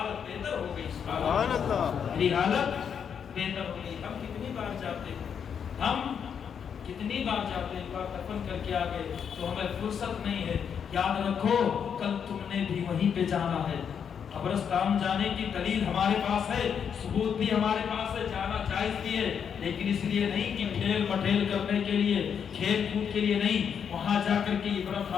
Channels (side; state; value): right; quieter; 7.5 dB